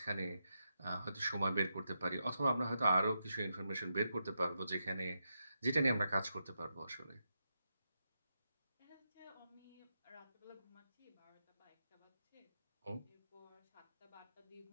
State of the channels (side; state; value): both; inverted; correlation -0.86